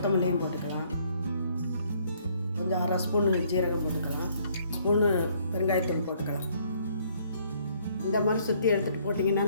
போட்டுக்கலாம். கொஞ்சம் 1/2 ஸ்பூனு ஜீரகம் போட்டுக்கலாம். ஸ்பூனு பெருங்காயத்தூள் போட்டுக்கலாம். இந்த மாதிரி சுற்றி எடுத்துகிட்டு போட்டிங்கன்னா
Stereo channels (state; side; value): inverted; both; correlation -0.65